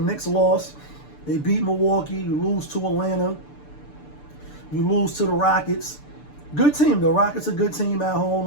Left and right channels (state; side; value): late; right; 6.8 ms